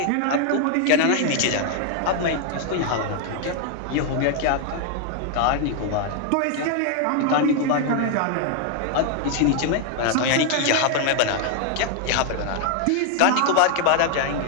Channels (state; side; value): different; both; correlation 0.00